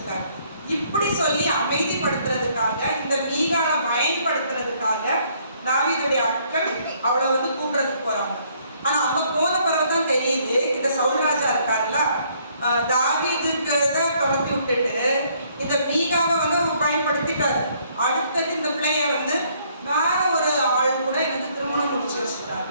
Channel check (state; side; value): inverted; both; correlation -0.65